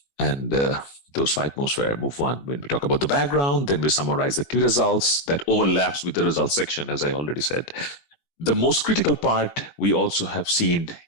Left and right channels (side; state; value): right; late; 22 ms